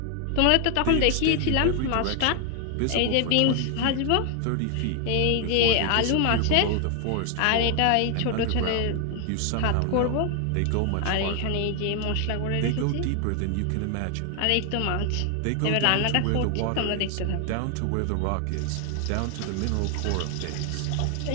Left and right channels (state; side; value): different; both; correlation 0.00